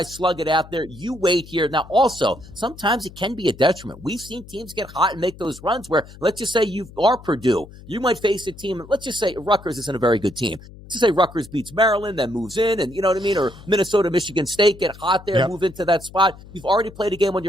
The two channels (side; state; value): left; noise; hum, 19 dB below the sound